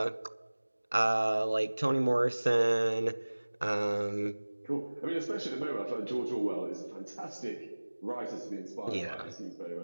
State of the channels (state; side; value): inverted; both; correlation -1.00